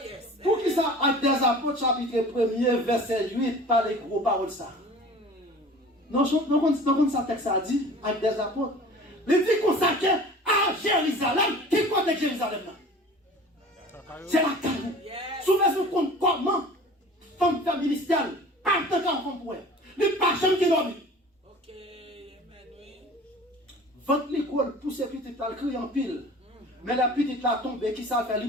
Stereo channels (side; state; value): both; normal; correlation 0.43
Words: chapitre 1er, verset 8, par les gros paroles ça. Non, ça texte a dit, avec des apôtres. Il dit consacré à Jérusalem. Qui compte Jérusalem là? C'est la caille. Souvent, compte comment femme faire ministère, pas de temps qu'on pourrait. Les personnes qui dorment. Ok, amen, oui. Votre l'école, pousse les petites là, crier en pile. Mais la petite là tombe, qui ça fait, lui